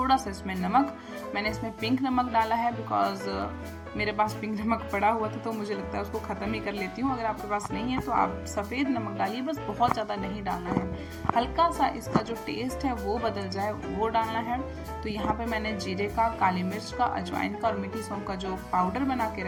सा इसमें नमक, मैंने इसमें पिंक नमक डाला है बिकॉज मेरे पास पिंक नमक पड़ा हुआ था, तो मुझे लगता है उसको ख़त्म ही कर लेती हूँ। अगर आपके पास नहीं है तो आप सफ़ेद नमक डालिए, बस बहुत ज़्यादा नहीं डालना है, हल्का सा इसका जो टेस्ट है वो बदल जाए वो डालना है। तो यहाँ पे मैंने जीरे का, काली मिर्च का, अजवाइन का और मीठी सौंफ का जो पाउडर बना के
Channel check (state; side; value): identical; both; correlation 1.00